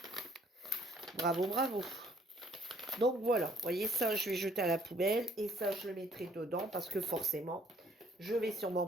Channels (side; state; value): both; normal; correlation 0.61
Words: Bravo, bravo. Donc voilà, vous voyez, ça, je vais jeter à la poubelle et ça, je le mettrai dedans parce que forcément, je vais sûrement